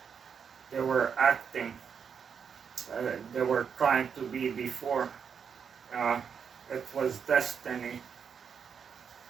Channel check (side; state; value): left; quieter; 6.8 dB